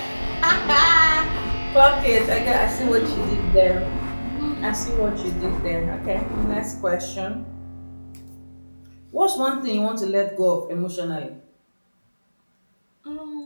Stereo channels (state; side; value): inverted; both; correlation -1.00